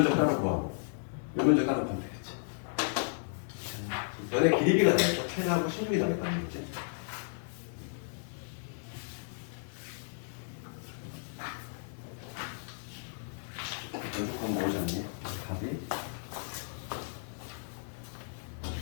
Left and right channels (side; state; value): right; silent; digital silence